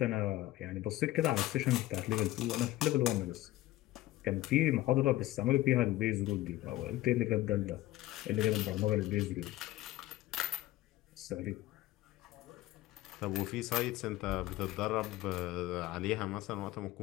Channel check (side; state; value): right; quieter; 16.2 dB